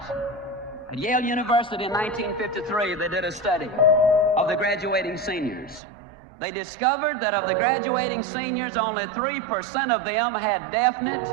At Yale University in 1953, they did a study of the graduating seniors. They discovered that of the graduating seniors, only 3% of them had definite,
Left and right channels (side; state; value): left; drops out; at 5.8 s